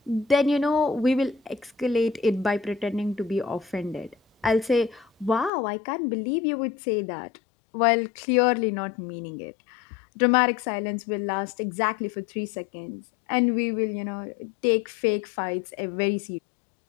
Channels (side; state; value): right; drops out; at 5.5 s